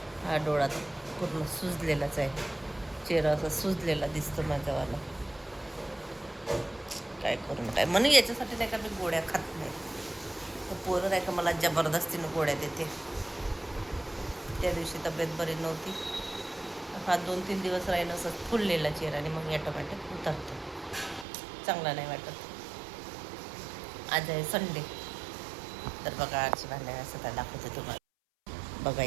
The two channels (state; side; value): drops out; left; at 21.2 s